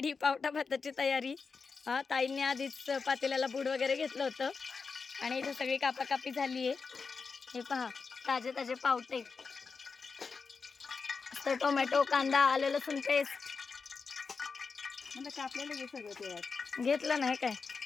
पावटा भाताची तयारी. हा, ताईंनी आधीच पातेल्याला बूड वगैरे घेतलं होतं. आणि इथे सगळी कापाकापी झाली आहे. हे पहा, ताजे ताजे पावटे. तर टोमॅटो, कांदा, आलं लसूण पेस्ट कापलेलं घे सगळं ते घेतलं नाही काय.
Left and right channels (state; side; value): quieter; right; 5.0 dB